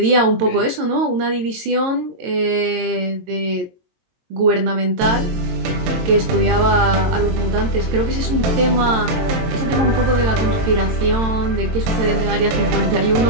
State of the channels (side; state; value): left; late; 22 ms